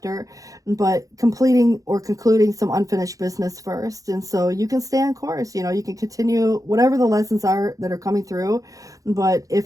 but completing or concluding some unfinished business first. And so you can stay on course, you can continue whatever the lessons are that are coming through. But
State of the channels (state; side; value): late; left; 0.17 ms